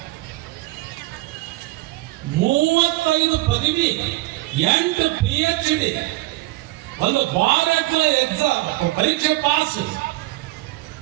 35 ಪದವಿ, 8 PhD, ಒಂದು ಬಾರಕ್ಲ ಎಕ್ಸಾಮ್ ಪರೀಕ್ಷೆ ಪಾಸ್.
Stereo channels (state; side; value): quieter; left; 19.2 dB